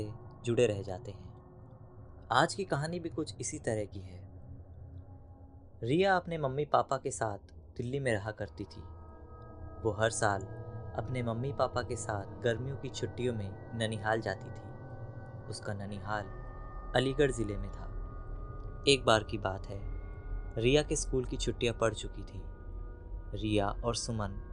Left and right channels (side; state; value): both; identical; correlation 1.00